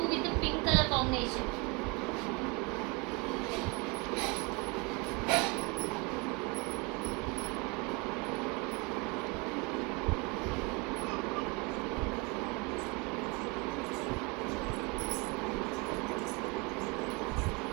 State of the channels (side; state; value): left; quieter; 28.9 dB